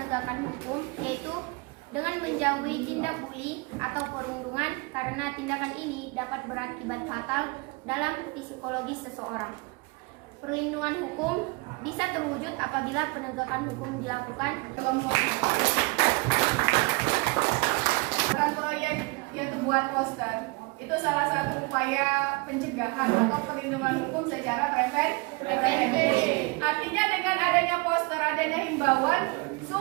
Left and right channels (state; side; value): quieter; left; 26.5 dB